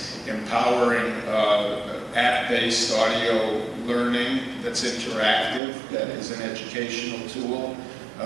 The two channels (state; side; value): drops out; left; at 5.6 s